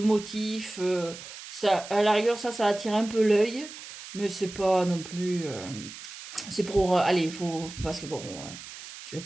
Ça, à la rigueur, ça attire un peu l'œil, mais c'est pas non plus. C'est pour. Allez, il faut. Parce que bon. je vais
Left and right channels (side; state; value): right; noise; hiss, 13 dB below the sound